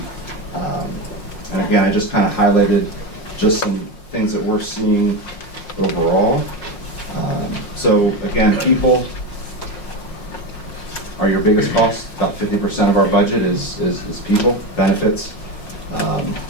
And again, I just kind of highlighted just some things that we're seeing overall. So again, people are your biggest cost. About 50% of our budget is people, benefits.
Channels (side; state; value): right; late; 5.6 ms